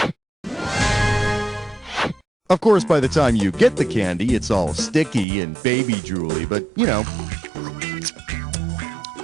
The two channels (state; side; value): drops out; left; at 5.2 s